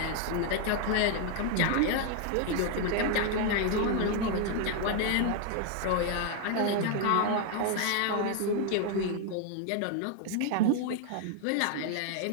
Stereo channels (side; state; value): both; different; correlation 0.00